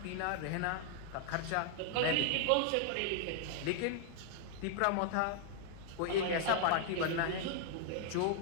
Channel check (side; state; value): both; different; correlation 0.00